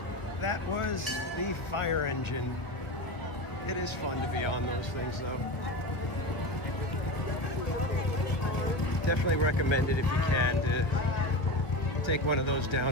That was the fire engine. It is fun to be on those things, though. Definitely recommend it if you can to take one of those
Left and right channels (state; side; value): late; right; 1.7 ms